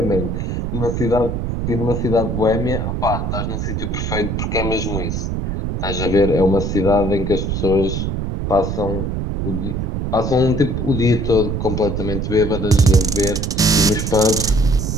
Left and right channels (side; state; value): right; noise; rumble, 2 dB below the sound